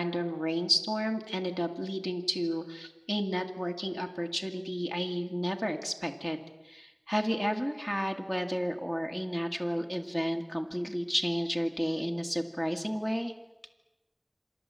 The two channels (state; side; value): identical; both; correlation 1.00